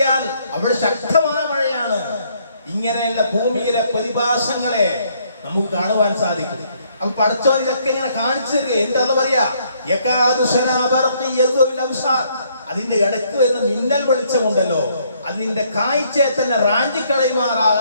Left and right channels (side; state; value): both; inverted; correlation -0.68